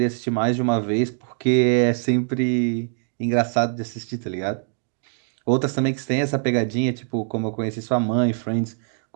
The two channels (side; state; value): left; silent; 63 dB below the other